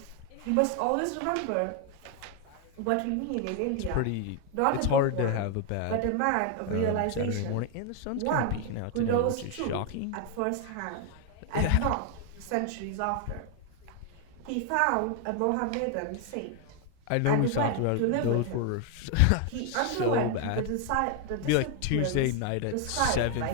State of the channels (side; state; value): both; different; correlation 0.00